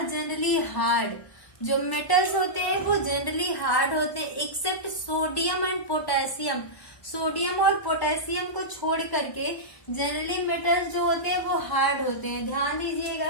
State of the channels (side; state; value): right; late; 1.2 ms